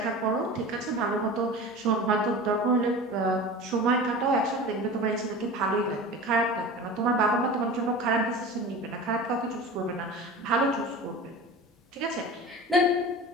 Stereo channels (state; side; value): normal; both; correlation 0.34